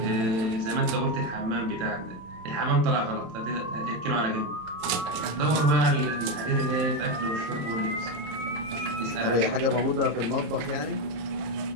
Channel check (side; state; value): left; late; 27 ms